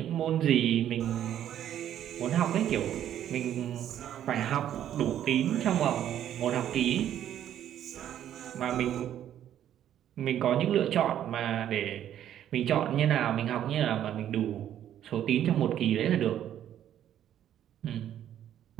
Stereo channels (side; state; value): left; quieter; 10.9 dB